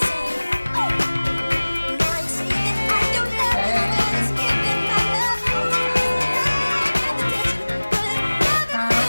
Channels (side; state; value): both; inverted; correlation -1.00